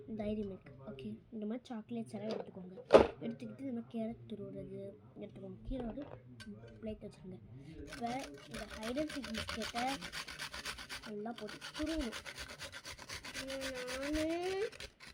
டைரி மில்க். ஓகே, இந்த மாதிரி சாக்லேட்ஸ் எல்லாம் எடுத்துக்கோங்க. எடுத்துக்கிட்டு இந்த மாதிரி கேரட் துருவுறது எடுத்துக்கோங்க. கீழே ஒரு பிளேட் வச்சுருங்க. இப்போ இந்த ஹைட் அண்ட் சீக் பிஸ்கெட்டை நல்லா போட்டு துருவணும்.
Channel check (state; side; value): identical; both; correlation 1.00